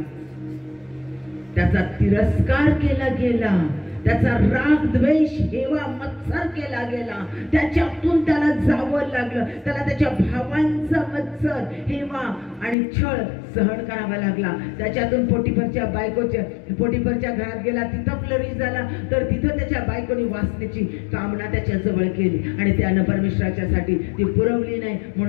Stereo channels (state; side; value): drops out; right; at 12.8 s